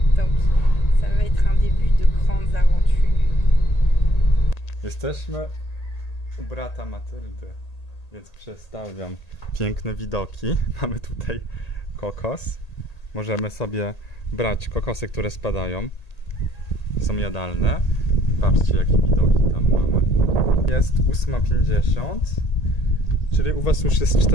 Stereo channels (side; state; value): right; late; 1.8 ms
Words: Donc, ça va être un début de grandes aventures. Jesteśmy u brata Matyldy, więc przestawiam piękne widoki. Mamy tutaj kokos. Możemy sobie brać kokosy, które spadają. Są jadalne. Patrzcie, jakie widoki tam mamy. Jest 8:50, czyli u was już jest